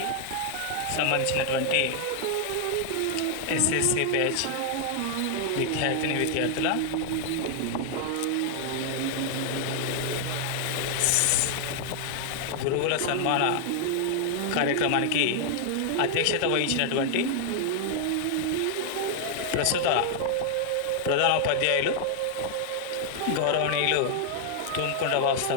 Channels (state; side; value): different; both; correlation 0.00